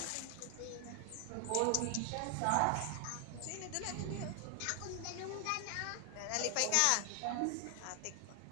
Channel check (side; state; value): both; different; correlation 0.00